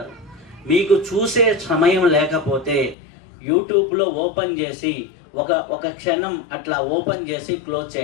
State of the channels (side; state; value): right; drops out; at 3.0 s